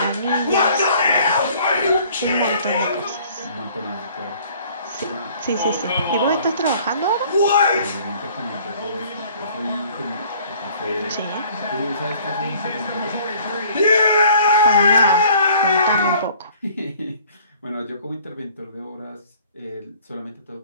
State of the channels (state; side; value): inverted; both; correlation -0.54